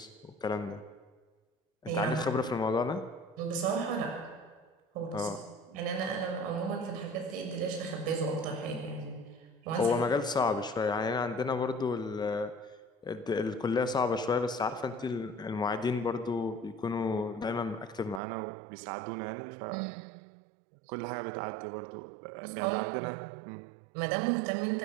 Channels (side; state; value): left; drops out; at 18.2 s